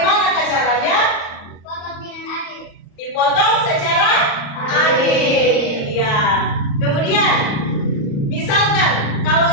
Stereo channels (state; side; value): late; right; 34 ms